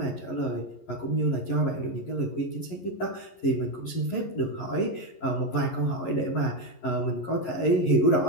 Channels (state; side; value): late; right; 11 ms